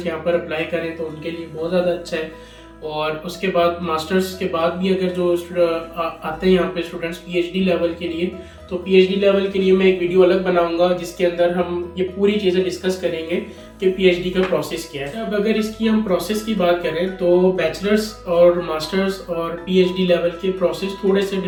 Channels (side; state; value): both; identical; correlation 1.00